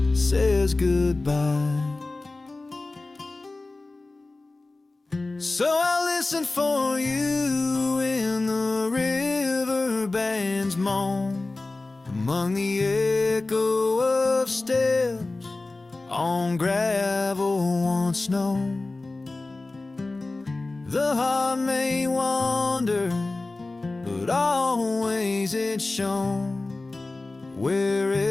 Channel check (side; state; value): right; quieter; 3.2 dB